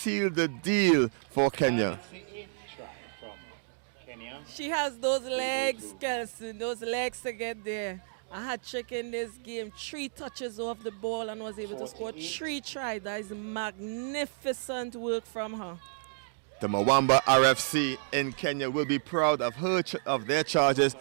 the deal for Kenya. That's the 8th try from Kenya. She has those legs, Kelson, those legs to get there. A hat-trick in this game, 3 touches off the ball and was able to score 3 tries. That is magnificent work from her. The Mwamba RFC in Kenya will be proud of of their charges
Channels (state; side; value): silent; left; digital silence